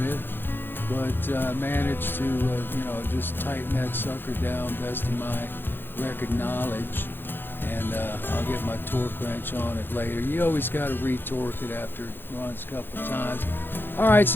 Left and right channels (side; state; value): right; late; 0.10 ms